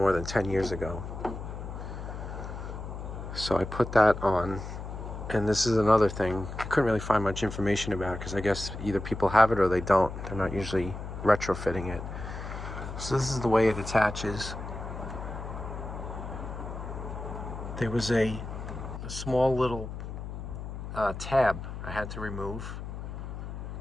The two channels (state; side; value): noise; left; hum, 8 dB below the sound